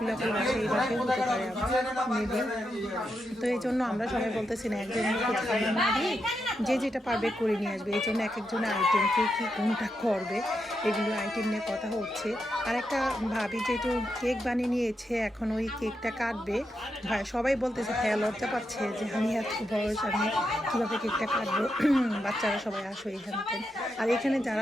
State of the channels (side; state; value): both; normal; correlation 0.84